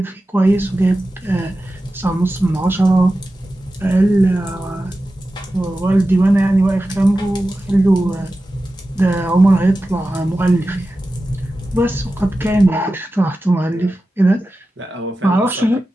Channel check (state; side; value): normal; both; correlation 0.94